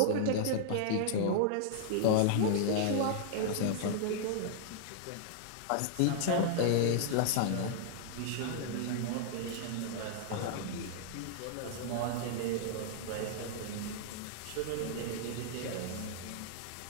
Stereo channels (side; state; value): both; different; correlation -0.01